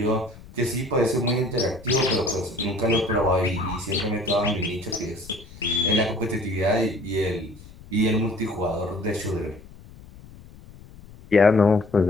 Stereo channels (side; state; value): left; noise; rumble, 19 dB below the sound